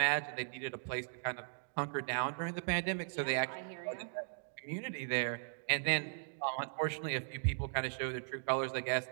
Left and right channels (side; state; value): left; silent; digital silence